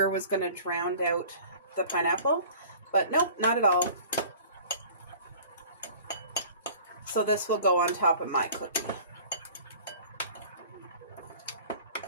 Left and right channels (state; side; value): inverted; both; correlation -0.46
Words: was going to drown out the pineapple, but nope, not at all. So this will go on top of my cookie.